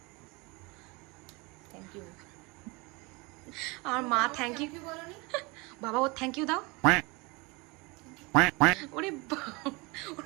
Thank you. আর মা থ্যাংক ইউ বলোনি? বাবা ও থ্যাংক ইউ দাও। ওরে ওর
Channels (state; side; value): quieter; left; 26.4 dB